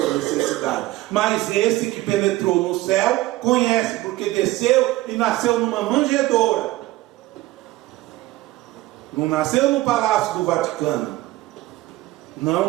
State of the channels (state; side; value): quieter; left; 17.7 dB